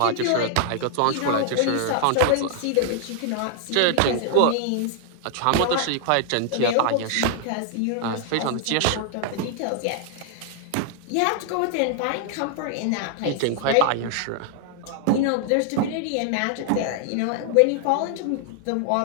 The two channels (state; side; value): different; both; correlation 0.00